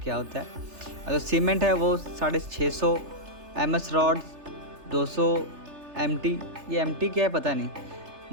होता है। और जो सीमेंट है वो 650 MS रॉड 200 MT, ये MT क्या है पता नहीं।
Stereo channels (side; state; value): left; late; 3.3 ms